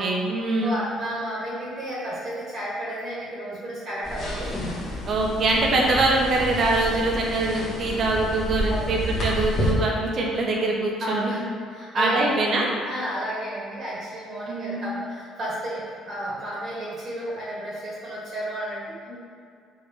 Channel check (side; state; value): both; normal; correlation 0.63